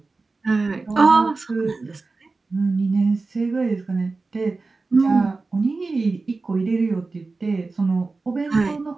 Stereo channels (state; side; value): quieter; left; 3.8 dB